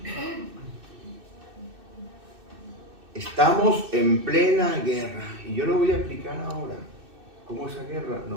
Estamos en plena guerra. Y yo lo voy a explicar ahora. ¿Cómo esa guerra?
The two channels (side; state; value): left; late; 2.6 ms